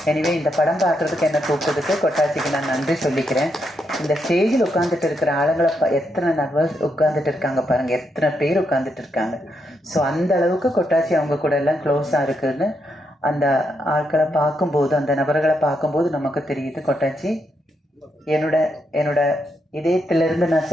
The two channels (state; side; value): normal; both; correlation 0.80